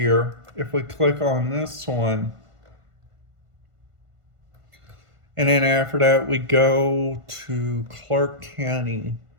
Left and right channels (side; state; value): left; late; 1.5 ms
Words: if we click on this one, and then after that we go to Clark County